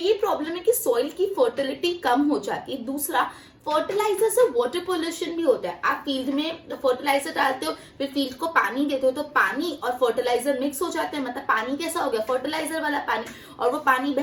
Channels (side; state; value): both; identical; correlation 1.00